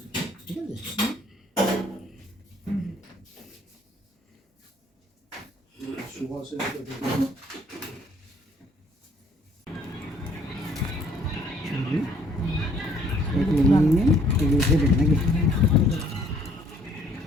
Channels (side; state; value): both; normal; correlation 0.61